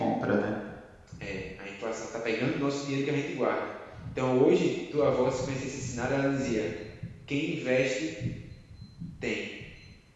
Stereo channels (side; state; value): both; identical; correlation 1.00